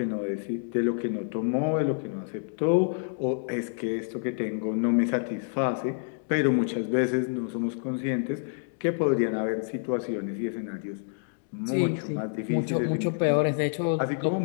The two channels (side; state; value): right; silent; digital silence